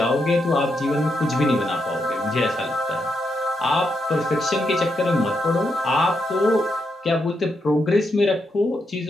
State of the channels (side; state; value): both; normal; correlation 0.82